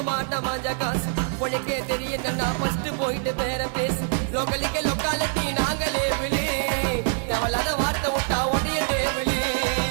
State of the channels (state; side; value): silent; left; 62 dB below the other